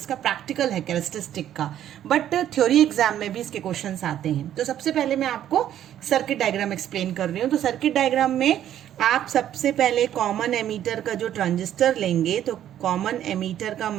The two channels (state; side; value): quieter; left; 11.1 dB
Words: प्रैक्टिकल है कैरेक्टरिस्टिक का, बट थ्योरी एग्जाम में भी इसके क्वेश्चंस आते हैं। तो सबसे पहले मैं आपको सर्किट डायग्राम एक्सप्लेन कर रही हूँ। तो सर्किट डायग्राम में आप सबसे पहले कॉमन एमीटर का जो ट्रांजिस्टर लेंगे, तो कॉमन एमीटर का